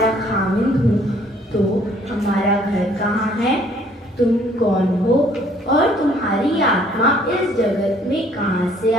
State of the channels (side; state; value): both; normal; correlation 0.61